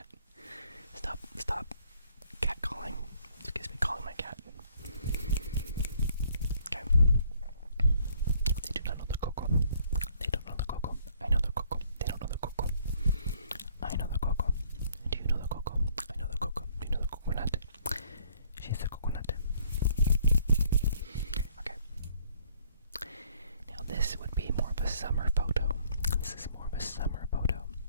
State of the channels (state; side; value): inverted; both; correlation -0.63